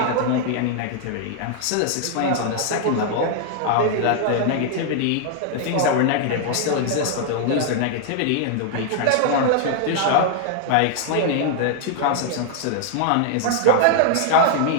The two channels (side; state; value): both; different; correlation 0.00